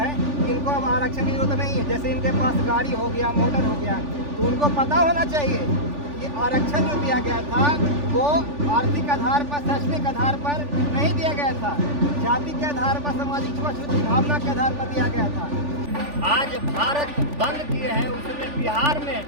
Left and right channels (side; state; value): left; late; 3.4 ms